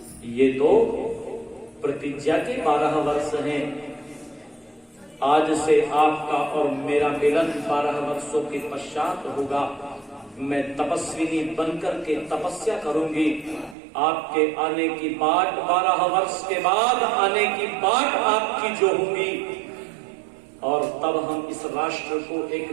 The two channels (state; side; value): drops out; left; at 13.8 s